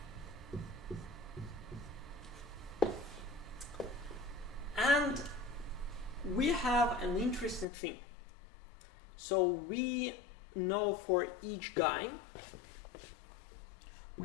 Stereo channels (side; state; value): right; drops out; at 7.7 s